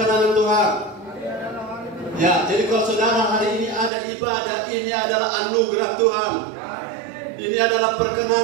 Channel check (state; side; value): drops out; left; at 3.9 s